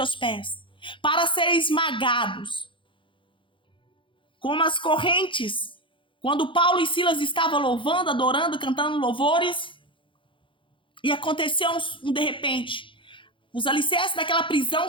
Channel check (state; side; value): late; right; 0.25 ms